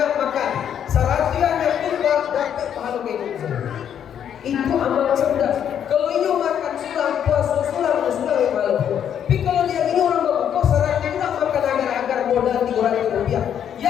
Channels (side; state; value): right; quieter; 9.1 dB